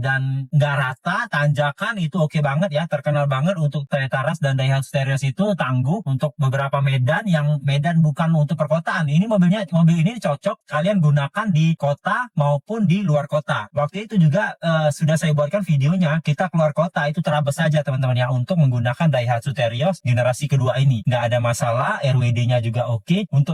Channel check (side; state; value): both; identical; correlation 1.00